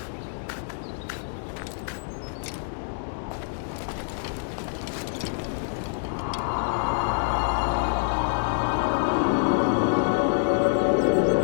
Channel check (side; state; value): right; silent; 61 dB below the other